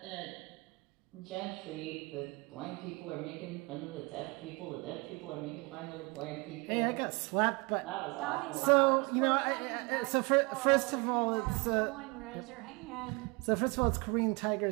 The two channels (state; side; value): quieter; left; 28.0 dB